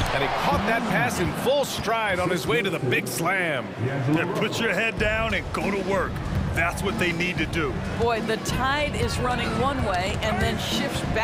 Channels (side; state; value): both; identical; correlation 1.00